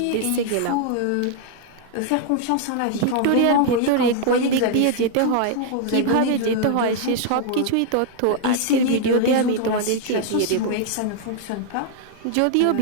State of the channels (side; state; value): both; different; correlation 0.00